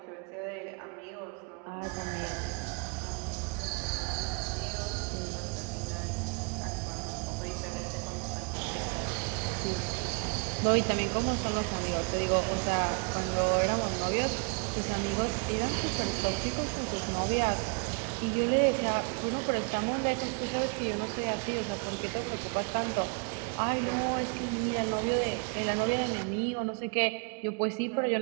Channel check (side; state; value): left; quieter; 35.2 dB